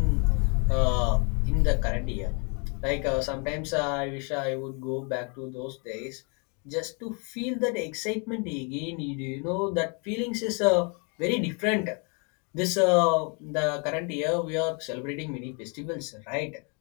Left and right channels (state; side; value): quieter; right; 35.5 dB